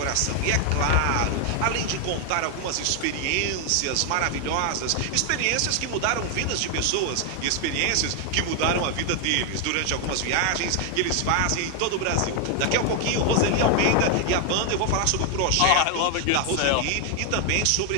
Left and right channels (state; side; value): different; both; correlation 0.00